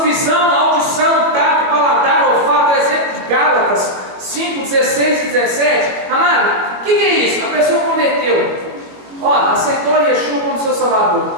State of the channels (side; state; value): left; late; 21 ms